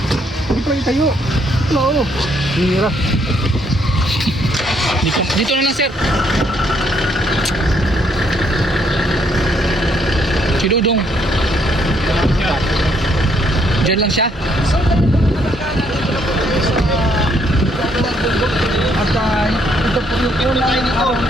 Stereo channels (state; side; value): normal; both; correlation 0.70